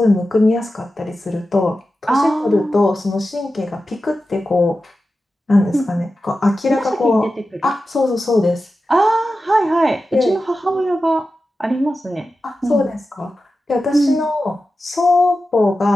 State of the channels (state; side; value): normal; both; correlation 0.93